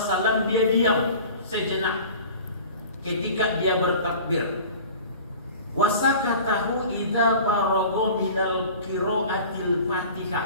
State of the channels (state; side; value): inverted; both; correlation -0.42